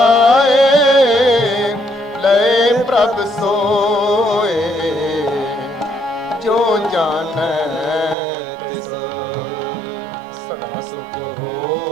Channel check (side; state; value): left; drops out; at 8.2 s